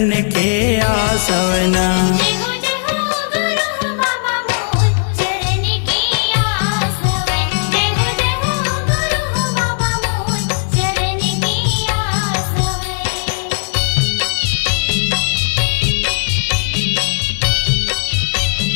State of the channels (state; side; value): silent; right; 67 dB below the other